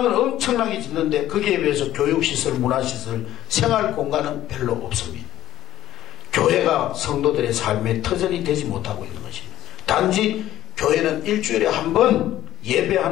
엄청나게 짓는데 거기에 비해서 교육시설, 문화시설, 생활공간은 별로 없습니다. 교회가 성도들의 삶의 터전이 되지 못하고 있는 것입니다. 단지 교회는 일주일에 한 번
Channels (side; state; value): right; quieter; 13.6 dB